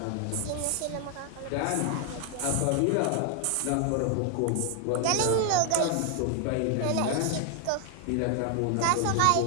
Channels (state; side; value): different; both; correlation 0.00